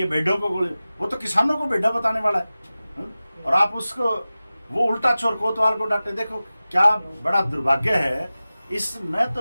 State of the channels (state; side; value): inverted; both; correlation -0.96